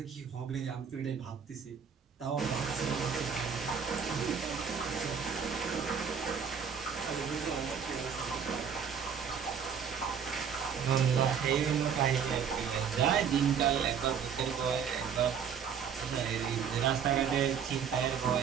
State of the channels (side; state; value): left; quieter; 7.2 dB